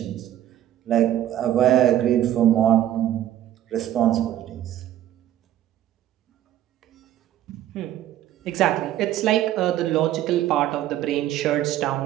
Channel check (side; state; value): left; quieter; 12.5 dB